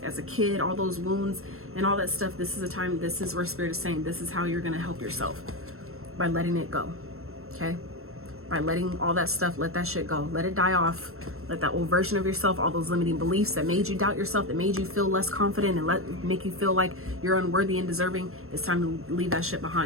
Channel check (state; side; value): late; left; 0.62 ms